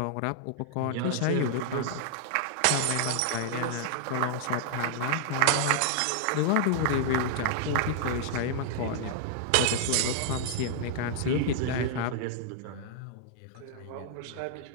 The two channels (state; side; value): different; both; correlation -0.01